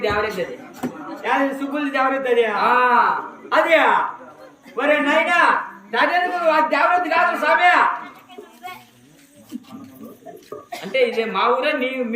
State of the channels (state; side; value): identical; both; correlation 1.00